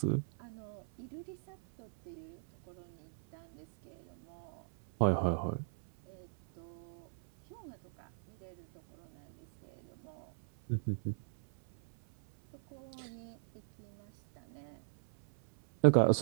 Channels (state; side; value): silent; left; 53 dB below the other